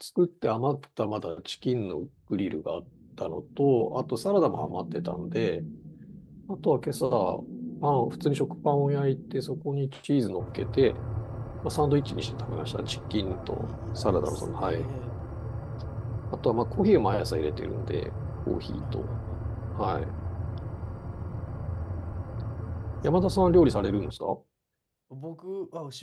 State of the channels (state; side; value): identical; both; correlation 1.00